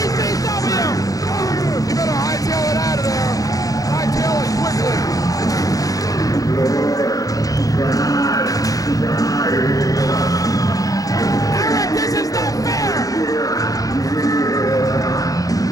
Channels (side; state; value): right; late; 0.17 ms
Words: You better hightail it out of there, and hightail it quickly. Eric, this is not fair!